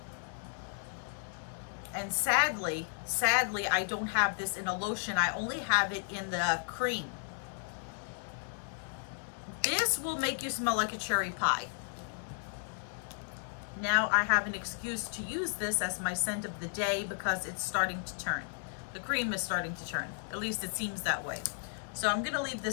And sadly, I don't have this in a lotion. I only have it in the cream. This will make you smell like a cherry pie. Now I have an excuse to use this as my scent of the day because it's starting to turn. The cream is starting to turn. At least it seems that way. So I'm gonna leave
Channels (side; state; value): right; silent; digital silence